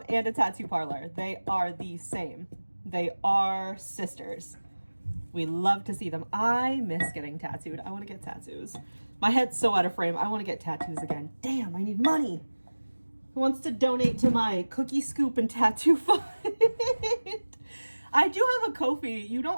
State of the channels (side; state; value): both; inverted; correlation -1.00